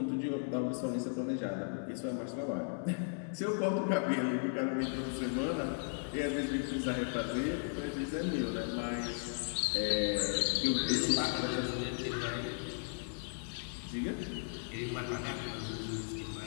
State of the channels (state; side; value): silent; right; digital silence